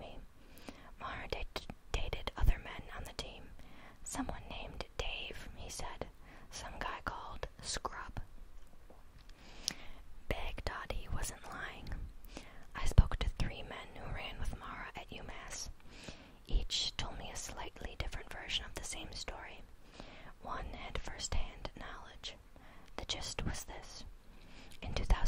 Maura dated other men on the team. Someone named Dave, he said. Some guy called Scrub. Baghdadi wasn't lying. I spoke to 3 men who ran with Maura at UMass. Each told me a slightly different version of the same story.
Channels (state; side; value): identical; both; correlation 1.00